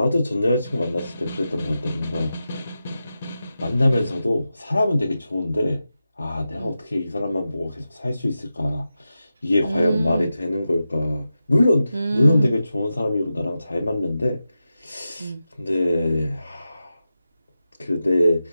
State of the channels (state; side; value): inverted; both; correlation -0.91